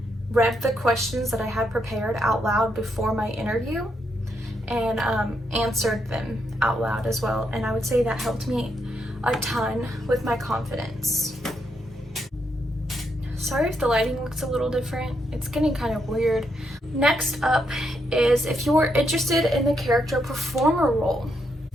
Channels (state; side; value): normal; both; correlation 0.79